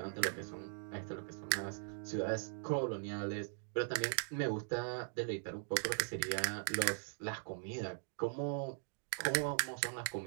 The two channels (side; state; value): left; silent; digital silence